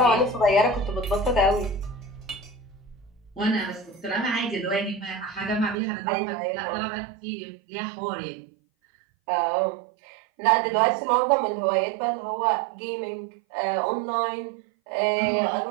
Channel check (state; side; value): drops out; left; at 5.8 s